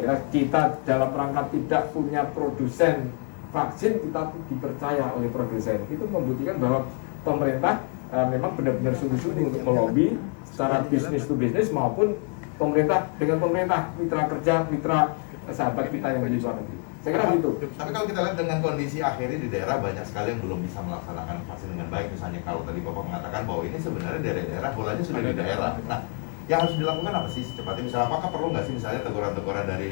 kira kita dalam rangka tidak punya produsen vaksin, kita dipercaya oleh produsen. Itu membuktikan bahwa pemerintah memang benar-benar sungguh-sungguh untuk melobi secara bisnis to bisnis maupun pemerintah dengan pemerintah, mitra kerja, mitra sahabat kita yang di luar negeri. Saya kira gitu. Tapi kalau kita lihat dengan kondisi akhirnya di daerah banyak sekali yang belum bisa melaksanakan vaksin dengan baik. Misalnya kalau tadi Bapak mengatakan bahwa ini sebenarnya daerah bolanya sudah di daerah. Nah, yang harus dilakukan apa sih secepatnya? Misalnya apakah perlu nggak sih misalnya teguran-teguran dari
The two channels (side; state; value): right; quieter; 38.4 dB